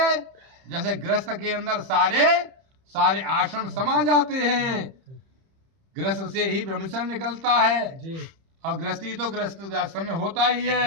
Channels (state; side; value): late; left; 31 ms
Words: गृहस्थ के अंदर सारे आश्रम समा जाते हैं, गृहस्थ से ही ब्रह्मचर्य निकलता है, जी और गृहस्थी तो गृहस्थ आश्रम में होता ही